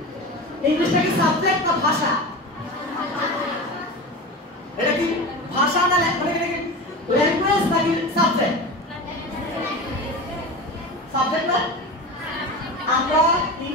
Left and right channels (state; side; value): normal; both; correlation 0.28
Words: ইংলিশটা কি সাবজেক্ট না ভাষা? এটা কি ভাষা না ল্যাঙ্গুয়েজ নাকি সাবজেক্ট? সাবজেক্ট না? আমরা